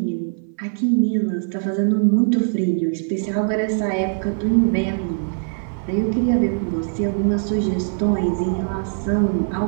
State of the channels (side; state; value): left; silent; 59 dB below the other